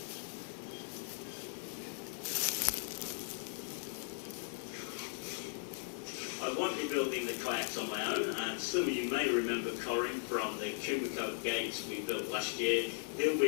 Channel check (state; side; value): silent; right; 52 dB below the other